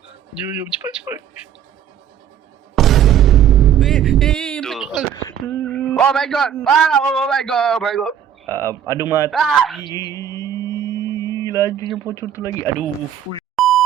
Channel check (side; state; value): left; quieter; 9.4 dB